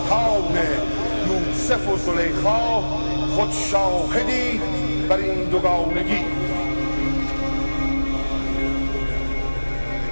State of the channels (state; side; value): inverted; both; correlation -1.00